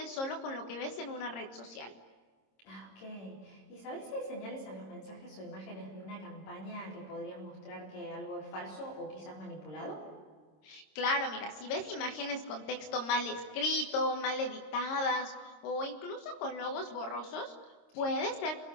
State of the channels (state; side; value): late; right; 26 ms